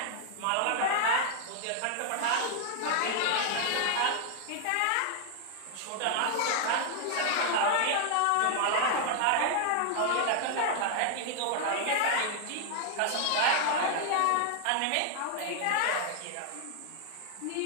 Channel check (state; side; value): different; both; correlation 0.00